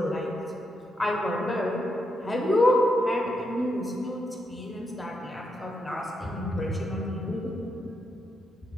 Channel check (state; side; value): normal; both; correlation 0.82